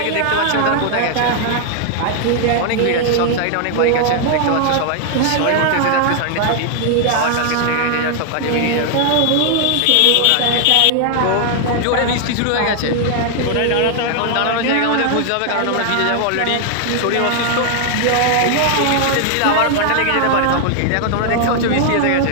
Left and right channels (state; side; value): different; both; correlation 0.00